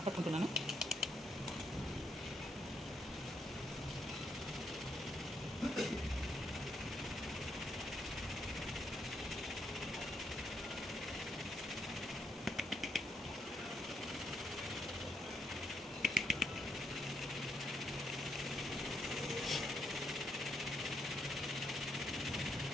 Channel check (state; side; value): normal; both; correlation 0.77